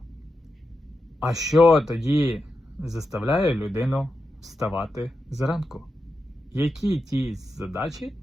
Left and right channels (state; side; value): normal; both; correlation 0.89